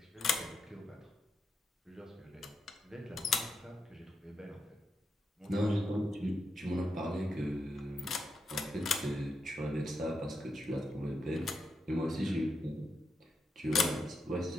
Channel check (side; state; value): both; normal; correlation 0.83